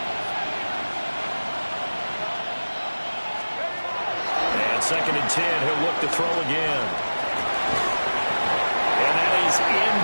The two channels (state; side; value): inverted; both; correlation -1.00